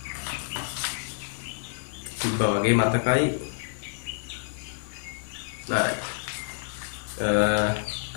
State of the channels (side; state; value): right; silent; 59 dB below the other